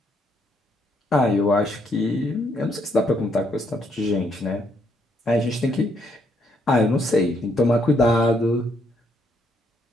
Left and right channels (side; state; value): both; normal; correlation 0.72